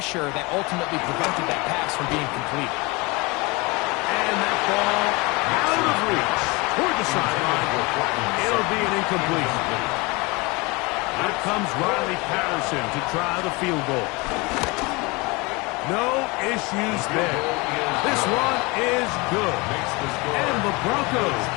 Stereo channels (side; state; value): right; quieter; 26.0 dB